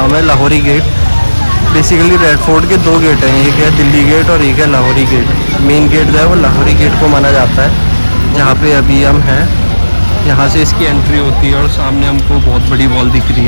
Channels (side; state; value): both; inverted; correlation -1.00